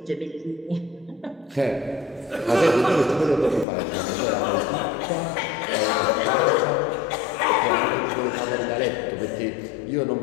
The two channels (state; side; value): drops out; right; at 3.7 s